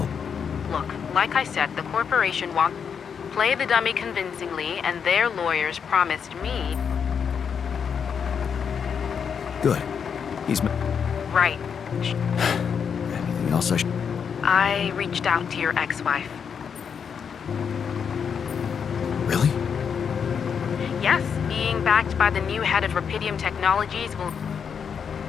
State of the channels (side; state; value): right; quieter; 6.9 dB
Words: Look, like I said, the corporation wants... Play the dummy convincingly, and their lawyers promised me... Good. He's... Right. Anything else I should... I reached out to your ex-wife. Really? Yes, being backed by the new head of Rapidium Technologies will...